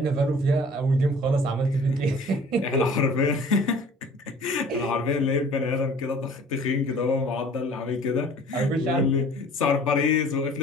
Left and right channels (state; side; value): normal; both; correlation 0.49